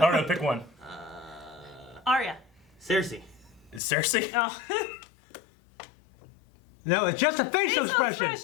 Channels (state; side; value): drops out; right; at 3.8 s